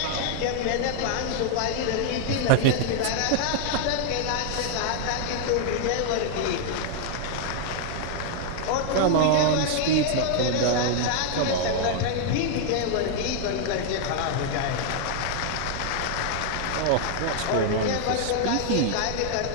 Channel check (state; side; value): different; both; correlation 0.00